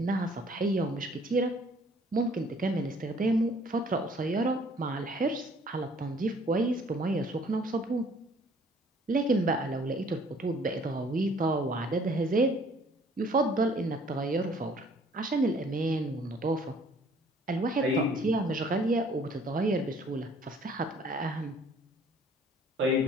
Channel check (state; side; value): normal; both; correlation 0.57